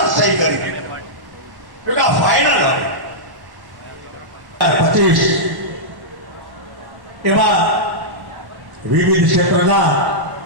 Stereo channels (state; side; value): late; left; 1.1 ms